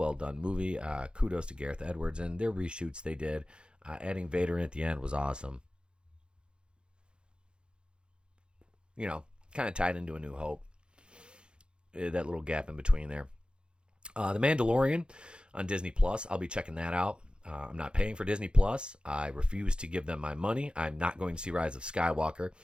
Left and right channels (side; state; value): left; late; 0.053 ms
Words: movie. Kudos to Gareth Edwards and their reshoots they did. Adding Vader in at the end was awesome. Kind of tied into A New Hope. That little gap in between there. The Mandalorian on Disney Plus. I'll be checking that out. I'm not paying for Disney Plus. I refuse to give them my money. I'm not going to see Rise of Skywalker.